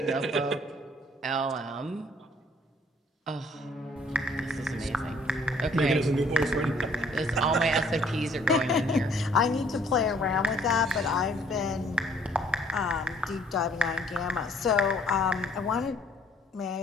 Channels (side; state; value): both; normal; correlation 0.60